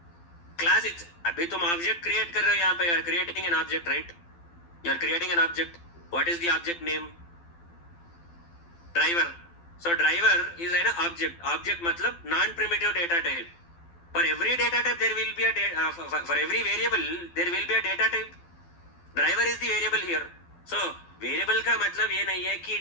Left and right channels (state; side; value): late; right; 12 ms